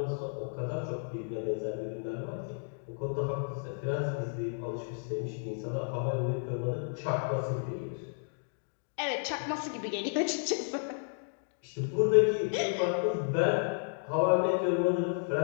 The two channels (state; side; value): silent; right; digital silence